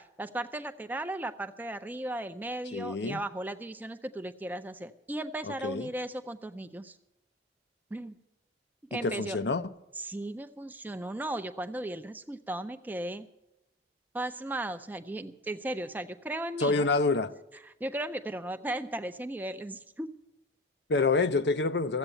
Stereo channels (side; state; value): both; normal; correlation 0.33